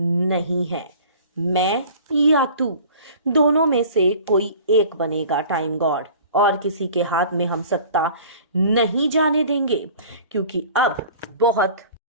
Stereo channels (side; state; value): both; inverted; correlation -0.45